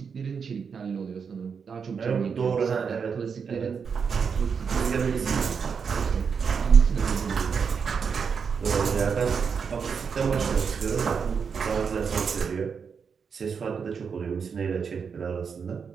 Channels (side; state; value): left; quieter; 6.2 dB